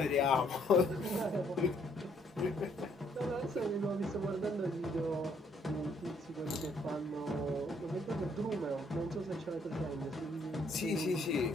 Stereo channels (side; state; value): both; normal; correlation 0.68